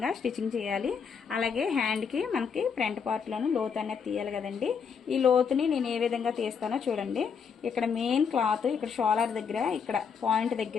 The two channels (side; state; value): right; quieter; 6.4 dB